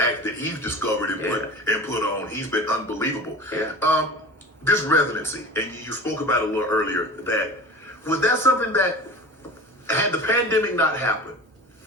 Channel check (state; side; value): normal; both; correlation 0.35